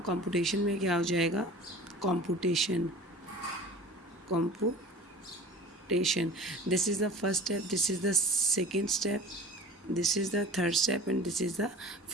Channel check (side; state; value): both; normal; correlation 0.41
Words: कंप्यूटेशन में क्या हो जाएगा, computation. This is the first step, this is the second step, this is the third step and this is the